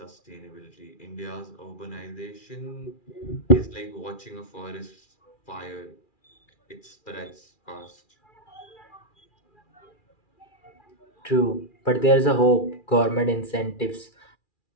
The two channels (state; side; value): late; right; 2.4 ms